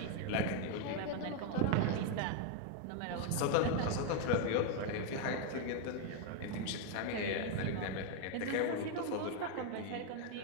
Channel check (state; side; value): different; both; correlation 0.01